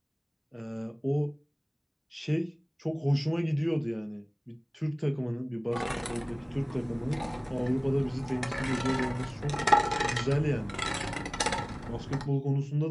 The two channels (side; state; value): both; identical; correlation 1.00